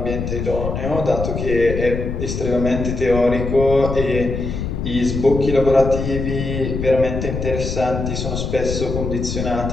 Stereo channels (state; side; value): noise; left; rumble, 4 dB below the sound